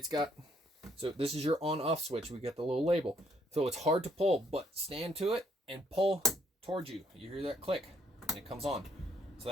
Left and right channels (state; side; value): normal; both; correlation 0.68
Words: got, so this is your on off switch. We get the little label. So it's hard to pull, but stand to it and pull towards you. You hear that click and it comes on. So